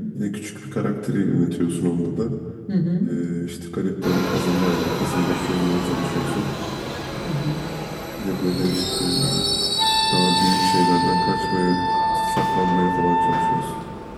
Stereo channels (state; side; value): identical; both; correlation 1.00